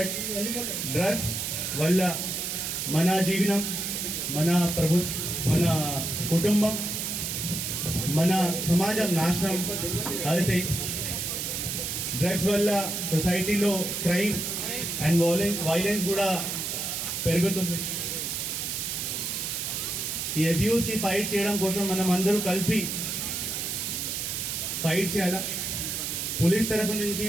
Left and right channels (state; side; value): noise; right; hiss, 2 dB below the sound